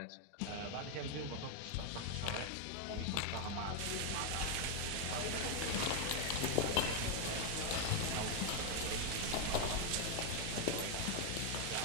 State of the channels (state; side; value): different; both; correlation 0.01